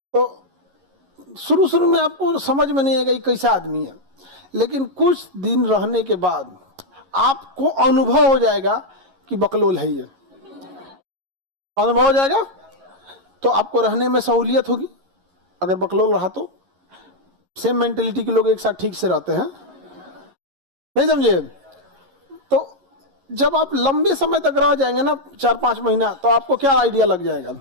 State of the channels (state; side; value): late; left; 11 ms